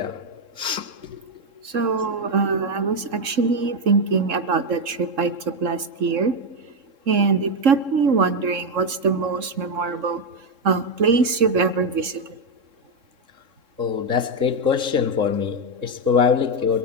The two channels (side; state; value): left; late; 3.7 ms